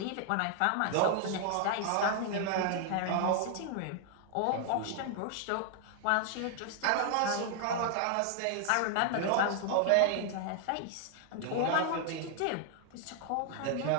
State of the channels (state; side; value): different; both; correlation 0.00